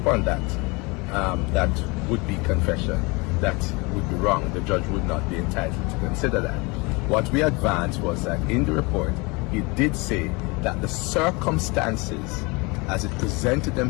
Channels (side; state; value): right; quieter; 27.0 dB